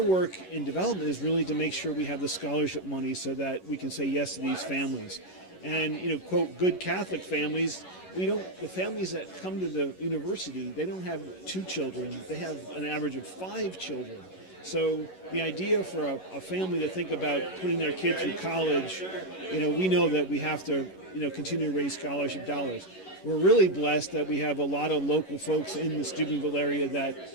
work in development is really to make sure we have the scholarship money so that we can say yes to these families. And quote, good Catholic families. The families that come to the university, they don't have 2 children. They have an average of 5 children. So the idea for a family to think about putting their kid through college, we know that we have to, continue to raise scholarship dollars. We're really blessed that we have a lot of local folks in the Steubenville area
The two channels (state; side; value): late; right; 11 ms